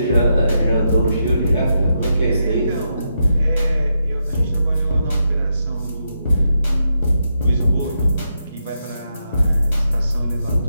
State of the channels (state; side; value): inverted; both; correlation -0.83